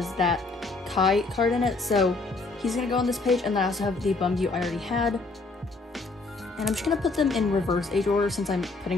that Kai card in it. So he's going to go on this page. And then I also have the Bumgyu I already had. And I'm just going to put them in reverse age order since I'm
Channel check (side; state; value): right; quieter; 3.6 dB